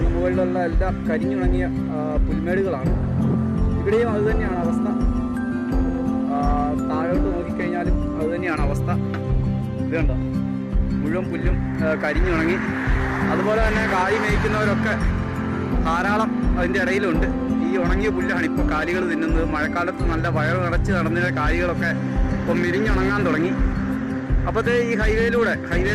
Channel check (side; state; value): both; identical; correlation 1.00